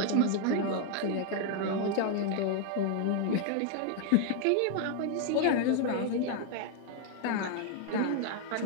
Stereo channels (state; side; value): different; both; correlation 0.00